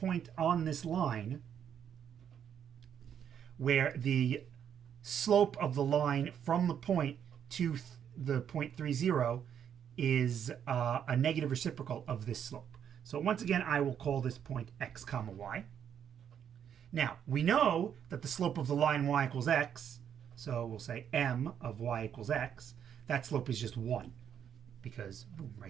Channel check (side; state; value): left; quieter; 8.7 dB